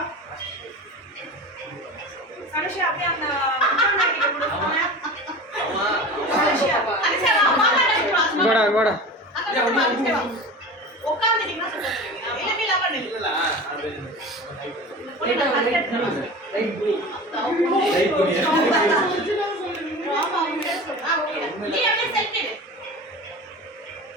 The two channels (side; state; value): both; normal; correlation 0.34